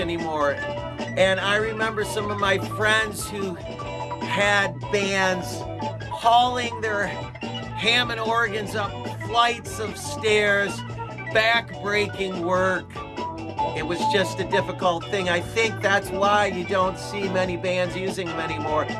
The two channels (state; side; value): identical; both; correlation 1.00